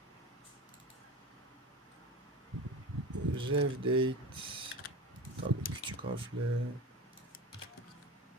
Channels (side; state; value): both; normal; correlation 0.30